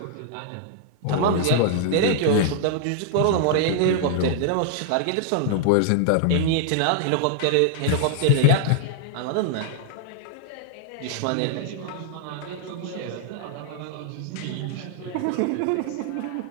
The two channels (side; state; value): both; different; correlation -0.01